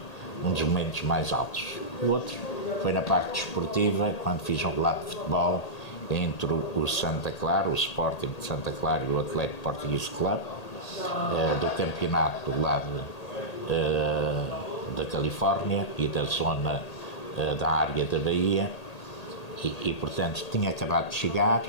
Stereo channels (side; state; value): right; late; 1.8 ms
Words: dos momentos mais altos. O outro foi na parte desportiva, quando fiz um relato de futebol entre o Santa Clara, o Sporting de Santa Clara e o Atlético Português Club, do campeonato do lado da Califórnia e da zona da área da Bahia. E, portanto, tinha acabado de chegar,